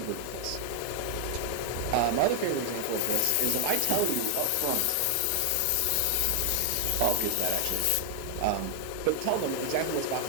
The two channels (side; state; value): both; different; correlation 0.00